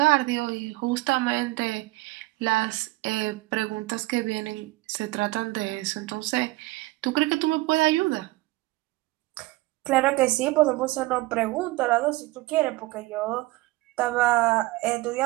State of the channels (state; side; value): quieter; left; 20.4 dB